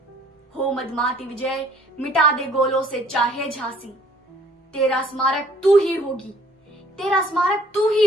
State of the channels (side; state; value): both; normal; correlation 0.58